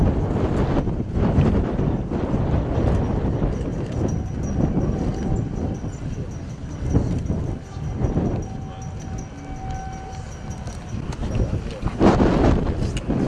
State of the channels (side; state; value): both; identical; correlation 1.00